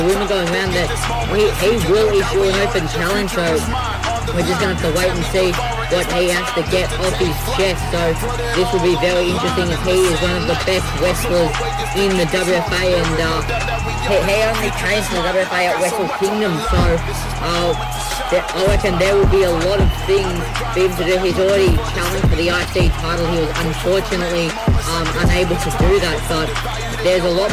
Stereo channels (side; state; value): both; identical; correlation 1.00